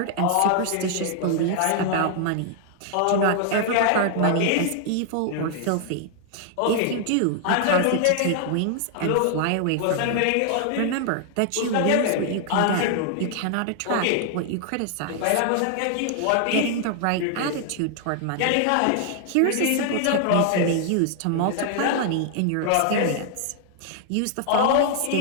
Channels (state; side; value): different; both; correlation 0.00